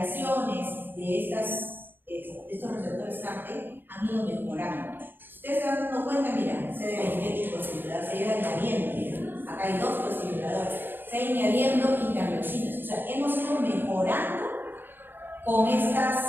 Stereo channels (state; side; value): late; left; 0.096 ms